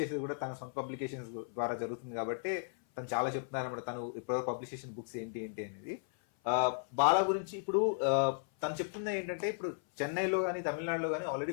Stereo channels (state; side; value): silent; right; 54 dB below the other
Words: చేసేది కూడా తన సొంత పబ్లికేషన్స్ ద్వారా జరుగుతుంది కాబట్టి తను చాలా చెప్తున్నారు అన్నమాట. తను ఇప్పుడు పబ్లిష్ చేసిన బుక్స్ ఏంటి ఏంటి అనేది. బాలా గురించి ఇప్పుడు తను చెప్తున్నది ఏంటంటే ఇప్పుడు చెన్నైలో కానీ తమిళనాడులో కానీ ఆల్రెడీ